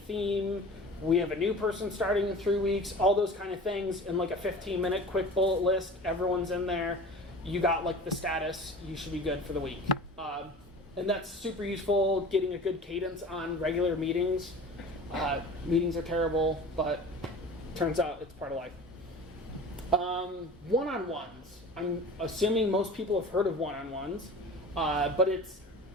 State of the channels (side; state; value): both; normal; correlation 0.39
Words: We have a new person starting in 3 weeks. All those kind of things in like a 15-minute quick bullet list. Everyone's in there. You got like the status. You should be good for the week. And that's super useful, getting a good cadence on regular meetings. Meetings are terrible, but turns out it's part of life. One-on-ones. I'm assuming most people have heard of one-on-ones, but it's